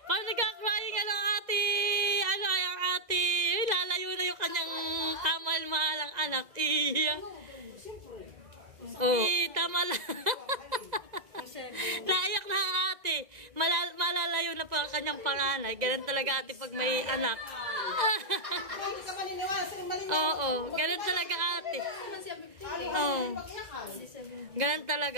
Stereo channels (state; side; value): late; left; 1.9 ms